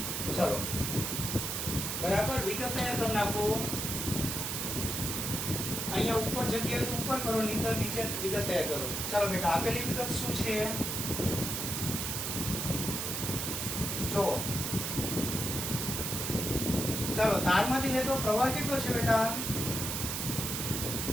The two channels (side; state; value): right; noise; hiss, 2 dB below the sound